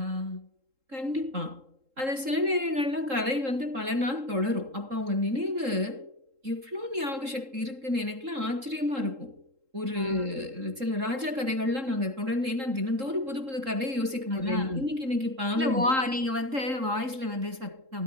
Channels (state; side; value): late; left; 3.7 ms